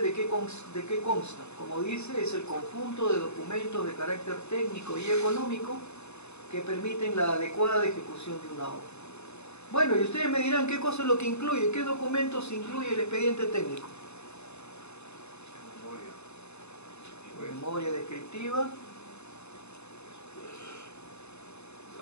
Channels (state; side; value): late; right; 0.81 ms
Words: qué consta? Como dice, es el conjunto de documentos de carácter técnico y económico que permiten la adecuada ejecución de una obra. Bueno, y ustedes me dirán qué cosa es lo que incluye, qué documentos incluye el expediente técnico. Memoria descriptiva,